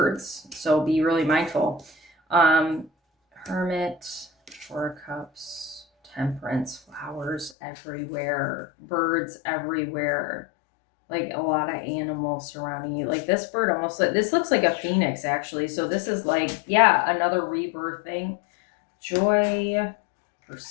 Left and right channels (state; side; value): drops out; right; at 7.6 s